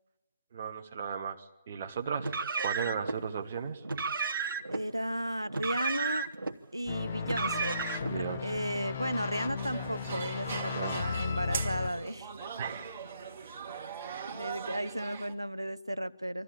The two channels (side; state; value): both; inverted; correlation -0.72